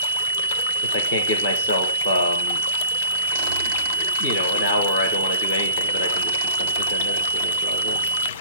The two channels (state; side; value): inverted; both; correlation -0.38